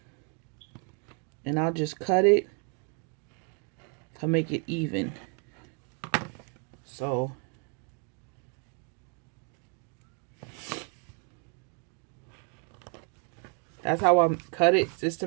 and I'll just cut it to make it even. So that's how I cut it, just to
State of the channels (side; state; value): left; quieter; 39.6 dB